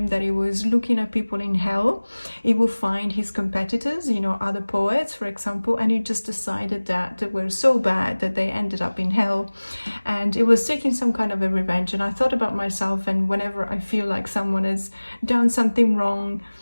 that he was looking at people in hell, he would find his competitors, you know, other poets, for example, and he just decided that they were so bad that they ended up in hell. And it was taking some kind of a revenge. And I thought about myself, and whenever I feel like someone has done something wrong,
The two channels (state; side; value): inverted; both; correlation -1.00